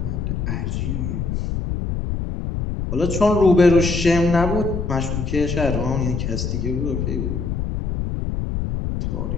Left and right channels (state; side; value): noise; left; rumble, 2 dB below the sound